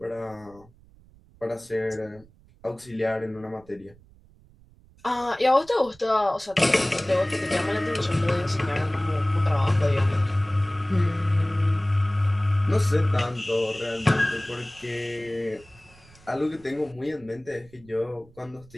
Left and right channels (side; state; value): right; noise; rumble, 26 dB below the sound